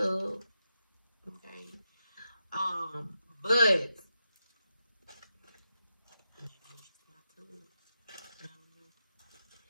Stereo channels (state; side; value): inverted; both; correlation -0.87